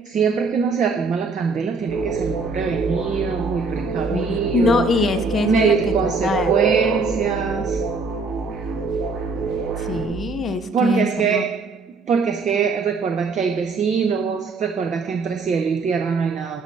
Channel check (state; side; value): quieter; left; 3.7 dB